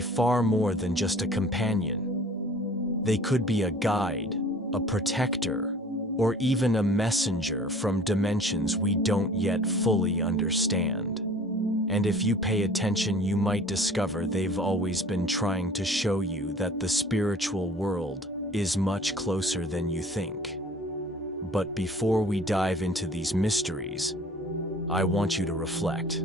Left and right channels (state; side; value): normal; both; correlation 0.48